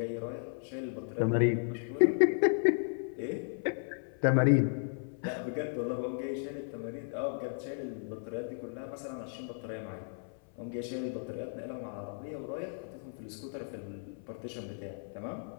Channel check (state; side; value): silent; right; 55 dB below the other